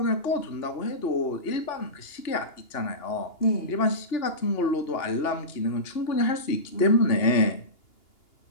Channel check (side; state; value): right; late; 2.8 ms